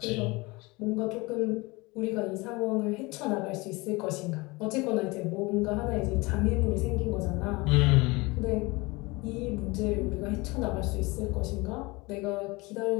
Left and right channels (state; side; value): quieter; right; 24.3 dB